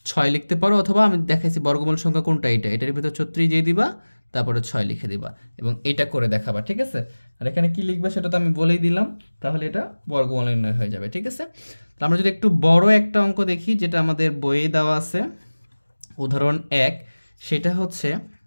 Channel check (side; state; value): both; inverted; correlation -1.00